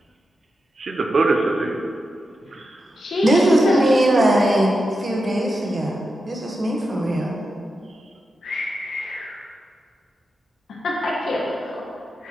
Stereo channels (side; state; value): both; normal; correlation 0.89